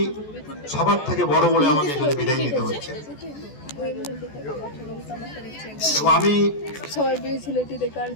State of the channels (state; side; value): late; right; 14 ms